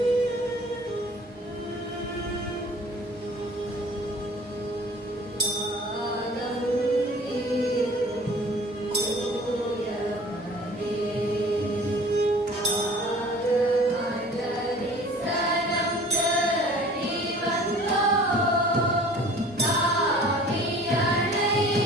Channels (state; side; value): normal; both; correlation 0.47